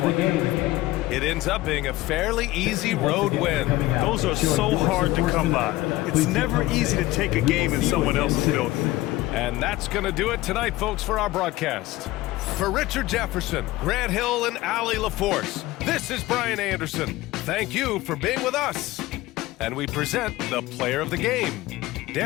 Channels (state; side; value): quieter; right; 17.7 dB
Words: It ends up being a fairly easy road win. Those are so hard to come by. It's never easy to take a game in someone else's building. And that's going to do it tonight, folks, for our broadcast. For Richard Jefferson, Grant Hill, and Allie LaForce, this is Brian Anderson. Thank you for being with us. And we present the player of the game,